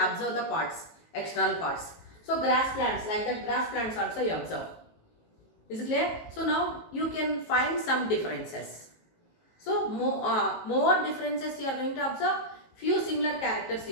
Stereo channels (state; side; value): late; right; 19 ms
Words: the parts, external parts. So grass plants, like that grass plants also you observe. Is it clear? So now you can find some differences. So more differences you are going to observe. Few similar characters